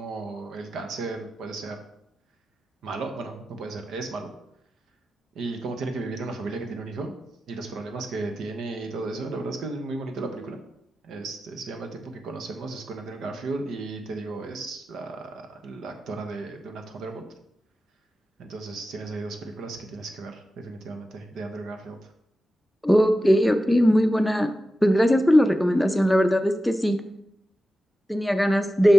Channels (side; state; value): both; normal; correlation 0.92